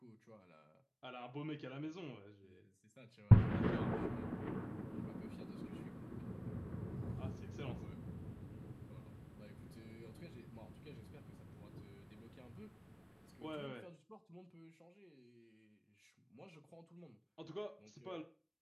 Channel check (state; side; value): identical; both; correlation 1.00